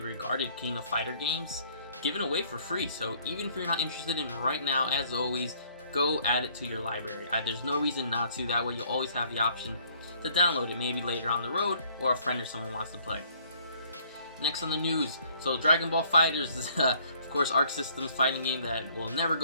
regarded King of Fighter games given away for free. So even if you're not interested in right now, as always, go add it to your library. There's no reason not to. That way you'll always have the option to download it, maybe later on the road, or a friend or someone wants to play. Next on the news, so Dragon Ball FighterZ is, of course, Arc System's fighting game that will never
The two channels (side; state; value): both; inverted; correlation -0.61